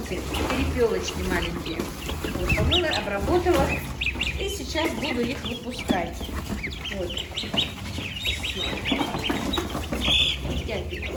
перепелочки маленькие. Вот, помыла, обработала. И сейчас буду их выпускать. Вот.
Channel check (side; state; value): both; identical; correlation 1.00